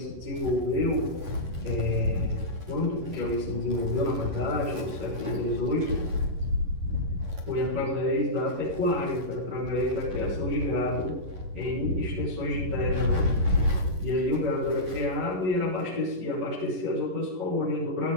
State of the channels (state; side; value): late; left; 11 ms